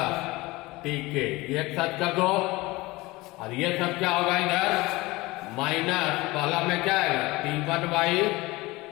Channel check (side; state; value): right; quieter; 21.2 dB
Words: Tk, एक साथ कर दो, और ये सब क्या होगा, इधर माइनस, पहला में क्या है, T1